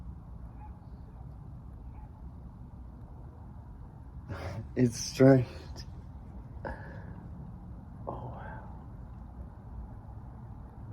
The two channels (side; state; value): both; identical; correlation 1.00